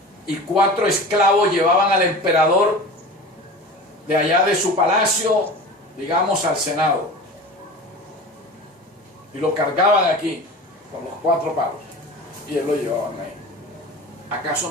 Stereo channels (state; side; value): normal; both; correlation 0.35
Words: y 4 esclavos llevaban al emperador de allá de su palacio, digamos, al Senado. Y lo cargaban aquí, con los 4 palos, y él lo llevaban ahí. ¿Acaso